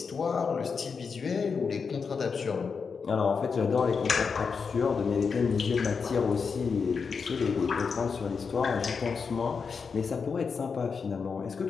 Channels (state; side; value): quieter; right; 5.5 dB